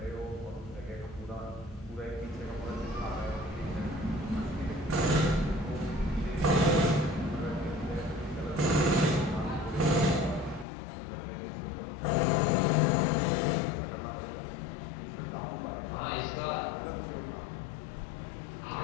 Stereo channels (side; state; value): right; drops out; at 10.7 s